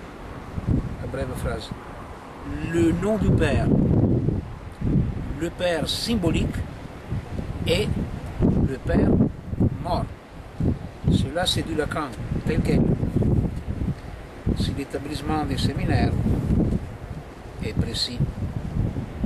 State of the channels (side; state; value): both; identical; correlation 1.00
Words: brève phrase. Le nom du père, le père symbolique et le père mort. Cela c'est du Lacan, tel quel. Si l'établissement des séminaires est précis.